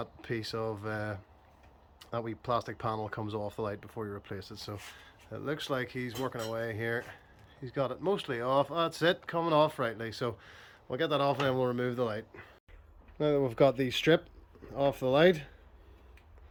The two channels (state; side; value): identical; both; correlation 1.00